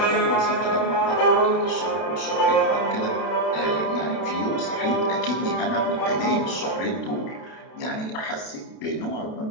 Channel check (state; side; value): late; right; 32 ms